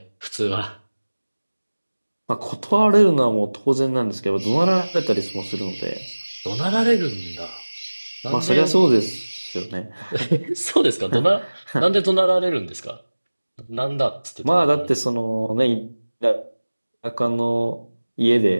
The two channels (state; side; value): inverted; both; correlation -1.00